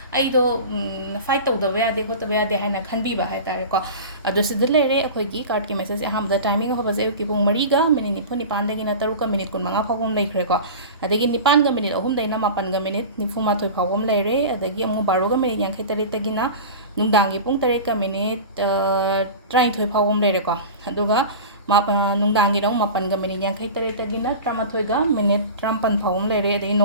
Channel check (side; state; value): both; inverted; correlation -0.32